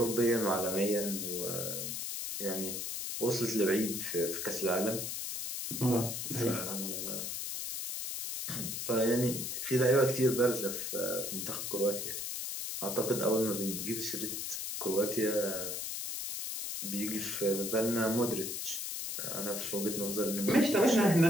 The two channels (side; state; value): left; noise; hiss, 4 dB below the sound